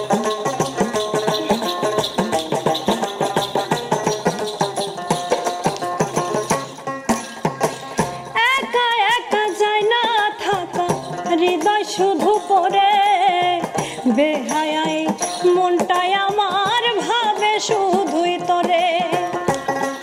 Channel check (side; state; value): both; identical; correlation 1.00